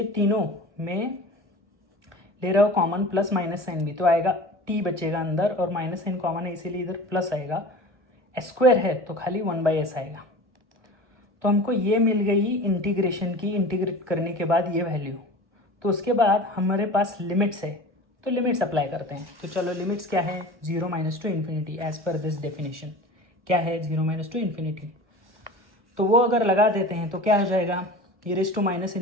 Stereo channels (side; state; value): left; late; 1.0 ms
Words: तीनों में ले रहा हूँ कॉमन, प्लस माइनस साइन भी, तो आएगा टी बचेगा अंदर और माइनस साइन कॉमन है इसीलिए इधर प्लस आएगा, स्क्वायर है तो खाली वन बाई एस आएगा। तो हमको ये मिल गई इंटीग्रेशन की, इंटीग्रेट करने के बाद ये वैल्यू। तो उसके बाद हमारे पास लिमिट्स है, तो लिमिट्स अप्लाई करते हैं। तो चलो लिमिट्स क्या है, 0 minus to infinity, as per this definition क्या है, 0 माइनस टू इन्फिनिटी। तो वो अगर लगा देते हैं तो क्या हो जाएगा, e raise to minus